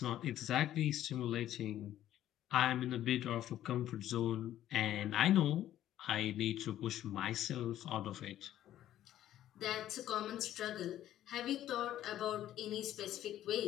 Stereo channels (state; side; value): quieter; right; 12.4 dB